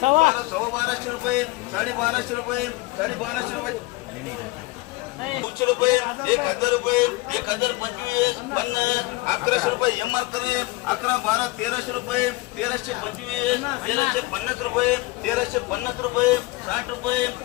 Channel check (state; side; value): quieter; right; 21.8 dB